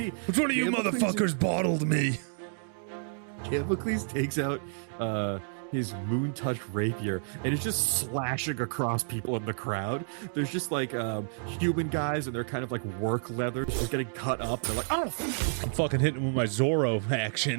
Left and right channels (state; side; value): silent; left; digital silence